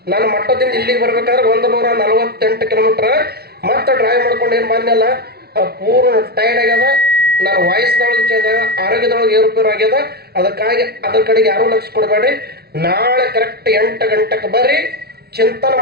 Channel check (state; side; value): late; left; 0.46 ms